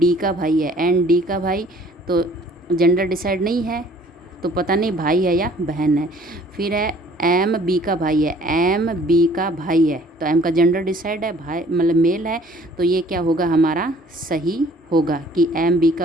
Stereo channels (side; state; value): both; normal; correlation 0.55